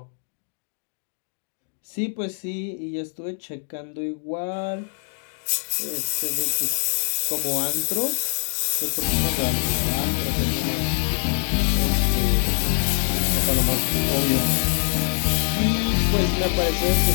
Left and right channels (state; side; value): silent; right; 63 dB below the other